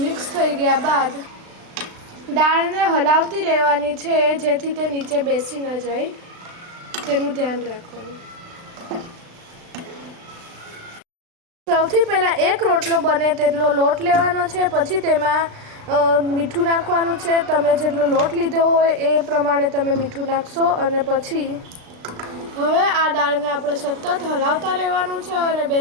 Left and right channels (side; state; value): left; late; 36 ms